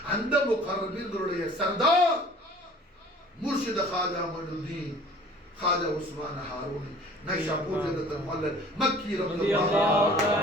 அந்த முகர்ரபீன்களுடைய சர்தார் முர்ஷித் காஜா மொய்னுத்தீன் खाजा उस्मान हारूनी नैशापुर जगत मौलवी मक्की रज़ियल्लाहु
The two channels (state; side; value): normal; both; correlation 0.49